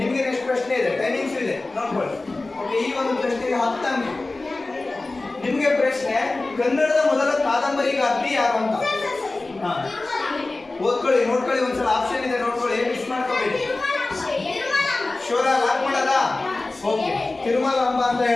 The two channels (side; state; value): right; quieter; 3.2 dB